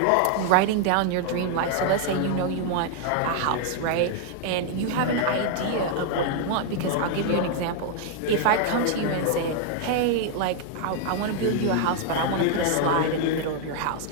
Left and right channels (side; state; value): both; different; correlation 0.00